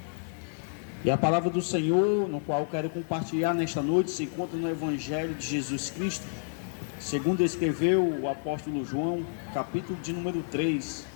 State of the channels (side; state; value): right; silent; digital silence